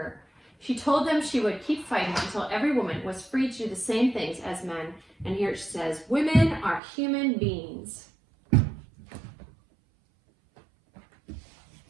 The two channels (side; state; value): left; drops out; at 6.8 s